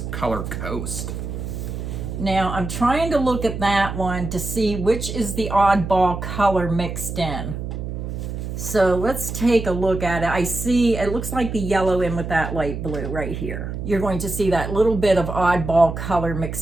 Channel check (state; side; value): noise; right; hum, 6 dB below the sound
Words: Coast. Now I'm trying to look at that one to see which is the oddball color mixed in. So let's take a look at it. I see it looks like the yellow in with that light blue right here. You're going to see that little bit of oddball color